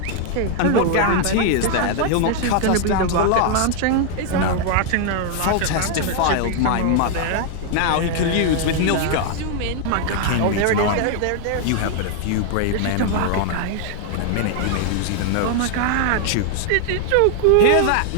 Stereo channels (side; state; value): both; different; correlation 0.00